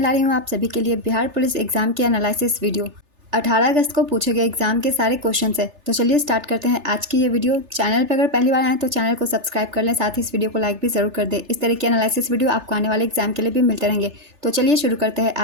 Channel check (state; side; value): late; left; 3.4 ms